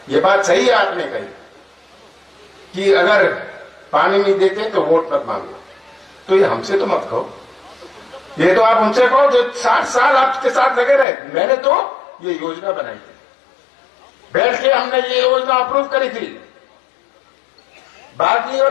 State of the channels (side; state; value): right; drops out; at 11.1 s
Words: ये बात सही है आपने कही कि अगर पानी नहीं देते तो वोट मत मांगो। तो ये हमसे तो मत कहो, ये तो आप उनसे कहो जो 60 साल आपके साथ लगे रहे। मैंने तो ये योजना बनाई थी, बैठ के हमने ये योजना अप्रूव करी थी, बागली